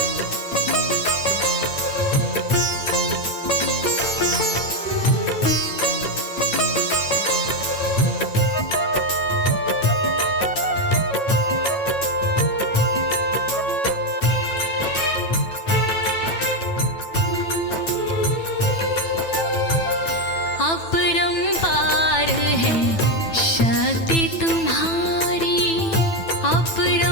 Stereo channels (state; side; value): late; right; 9.1 ms